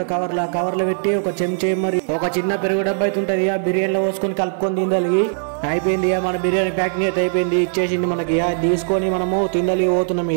కవర్ లో పెట్టి. ఒక చెంచా మరి ఒక చిన్న పెరుగు డబ్బా అయితే ఉంటది. ఆ బిర్యానీలో పోసుకొని కలుపుకొని తిందలిగి అయిపోయింది. మన బిర్యానీ ప్యాకింగ్ అయితే అయిపోయింది. ఇచ్చేసిండు మనకి. తీసుకొని మనము తిందలిగి పోతున్నాం.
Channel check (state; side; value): silent; left; digital silence